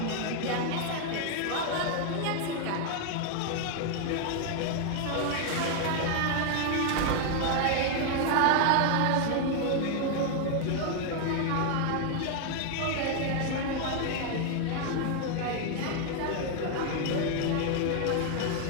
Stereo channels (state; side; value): different; both; correlation 0.00